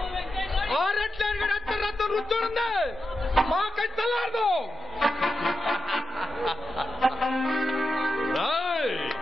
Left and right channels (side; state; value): both; normal; correlation 0.88